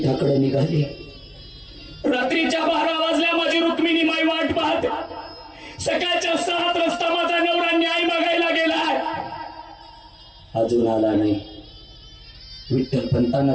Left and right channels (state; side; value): identical; both; correlation 1.00